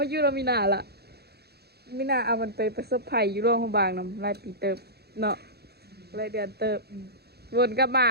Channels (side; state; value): left; late; 0.47 ms